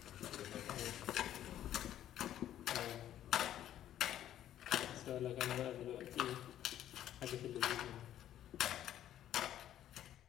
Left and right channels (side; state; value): right; quieter; 11.7 dB